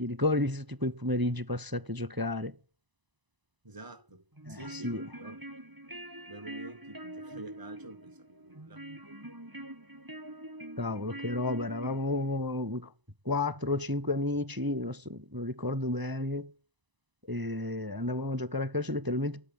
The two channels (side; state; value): left; late; 1.0 ms